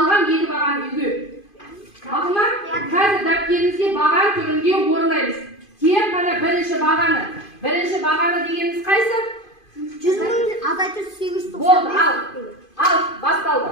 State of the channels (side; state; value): right; late; 2.5 ms